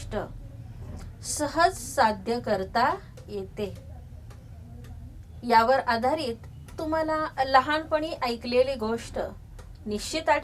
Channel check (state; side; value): identical; both; correlation 1.00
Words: सहज साध्य करता येते। यावर आधारित तुम्हाला लहानपणी ऐकलेली गोष्ट निश्चित